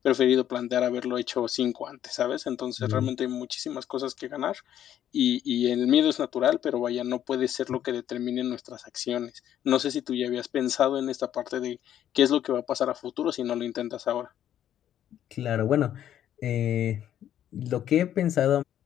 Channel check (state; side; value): quieter; right; 10.9 dB